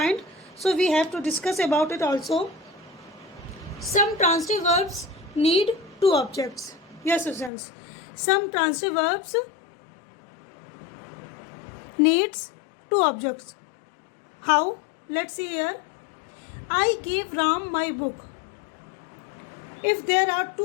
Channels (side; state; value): right; drops out; at 7.5 s